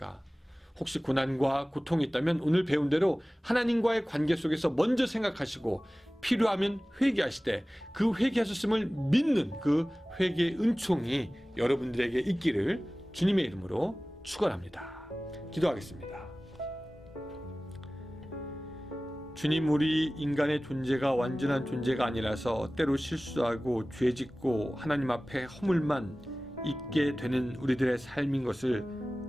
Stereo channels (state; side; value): normal; both; correlation 0.97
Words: 혹시 고난과 고통이 있다면 오늘 배운 대로 하나님과의 관계 속에서 먼저 생각하시고 필요하면 회개하시되 그 회개하셨음을 믿는 그 회개의 은총이 여러분들에게 있기를 주님의 이름으로 축원합니다. 기도하겠습니다. 주님, 우리 인간의 존재가 완전한 존재가 아니라서 때로 실수하고 죄짓고 하나님 앞에 허물만 있게 되는 우리들의 삶인 것을